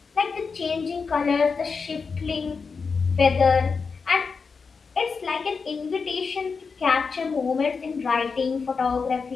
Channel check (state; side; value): quieter; right; 5.1 dB